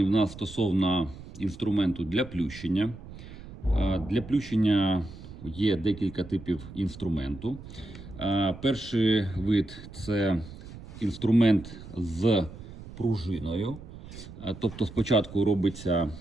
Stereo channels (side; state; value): right; noise; rumble, 15 dB below the sound